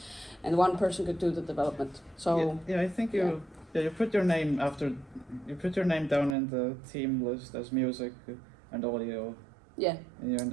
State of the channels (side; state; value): left; drops out; at 6.4 s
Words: and one person could do the development. So yeah, I think you put your name down in the team list as music and audio. Yeah. And you